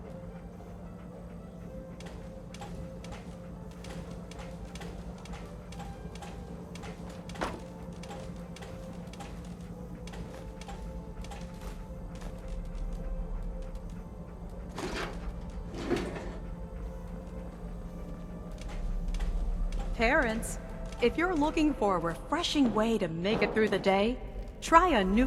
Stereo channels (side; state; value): both; identical; correlation 1.00